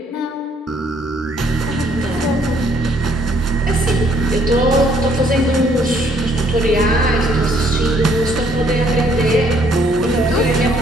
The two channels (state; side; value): normal; both; correlation 0.65